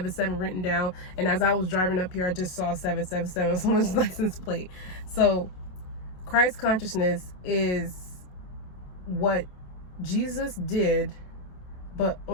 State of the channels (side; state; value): right; late; 27 ms